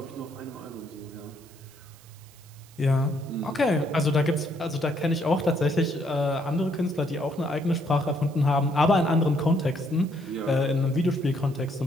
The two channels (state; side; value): noise; right; hiss, 25 dB below the sound